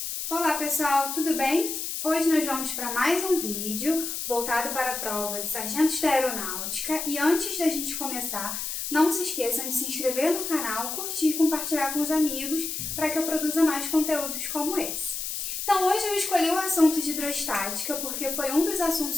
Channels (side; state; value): left; noise; hiss, 4 dB below the sound